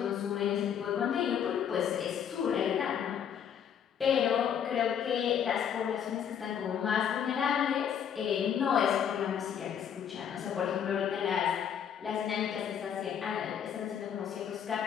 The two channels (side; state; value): right; quieter; 8.5 dB